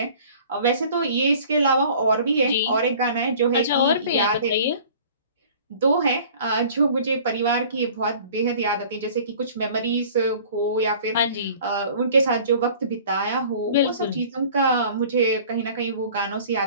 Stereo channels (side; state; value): both; inverted; correlation -0.48